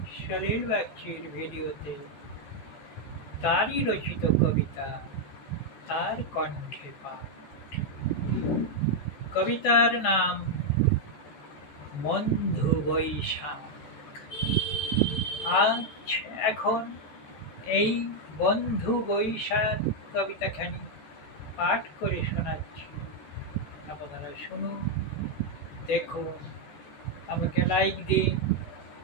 সলিল বাগচির ভিডিওতে। তারই রচিত কবিতা, তার কণ্ঠে পাঠ। কবিতার নাম বন্ধু বৈশাখ। আজ এখন এই বন্ধু বৈশাখ কবিতাখানি পাঠ করে শোনাচ্ছি। আপনারা শুনুন, দেখুন, আমাকে লাইক দিন,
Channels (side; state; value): right; late; 14 ms